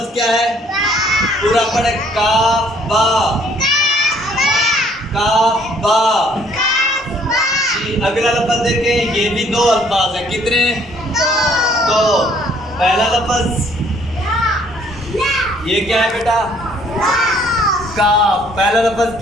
क्या है? पूरा पढ़े। काफ बा। काफ बा। अगला लफ्ज देखें, ये भी दो अल्फाज हैं। कितने? दो। पहला लफ्ज ये क्या है बेटा? काफ। पहला लफ्ज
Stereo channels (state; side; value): normal; both; correlation 0.62